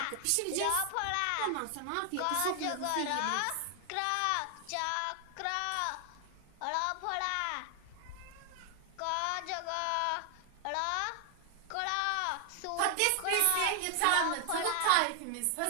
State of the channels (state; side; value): different; both; correlation 0.00